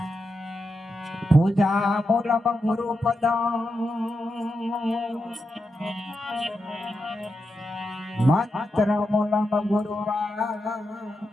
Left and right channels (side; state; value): both; normal; correlation 0.87